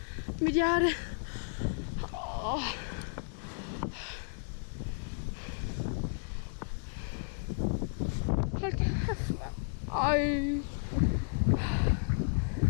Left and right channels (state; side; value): silent; right; digital silence